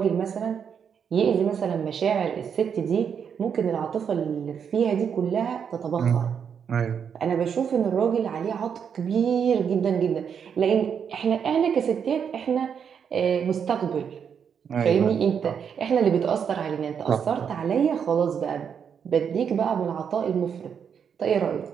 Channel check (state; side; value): quieter; left; 7.4 dB